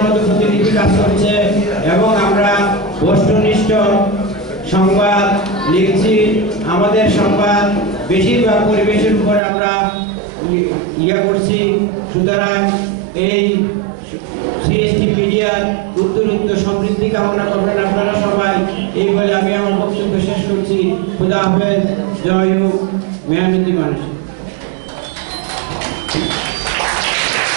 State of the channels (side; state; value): left; drops out; at 9.4 s